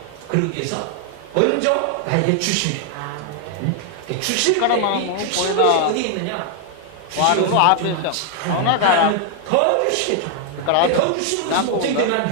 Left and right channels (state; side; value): different; both; correlation 0.00